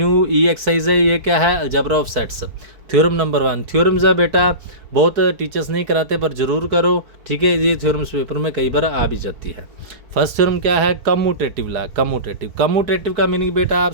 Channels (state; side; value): late; left; 4.5 ms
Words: एक्सरसाइज है. ये क्या है? Algebra of sets. Theorem number 1. Theorems है बेटा, बहुत टीचर्स नहीं कराते पर ज़रूर करो. ठीक है. ये थ्योरम्स पेपर में कई बार आ भी जाती है. फर्स्ट थ्योरम क्या है? Commutative law. कम्यूटेटिव का मीनिंग बेटा आप